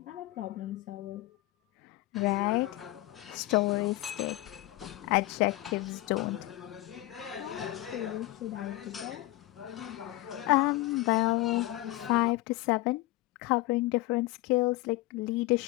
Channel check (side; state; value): right; quieter; 17.9 dB